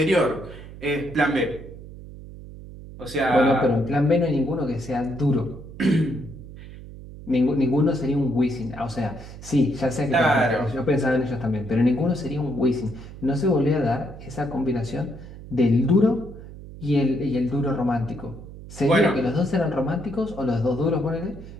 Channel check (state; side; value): noise; right; hum, 15 dB below the sound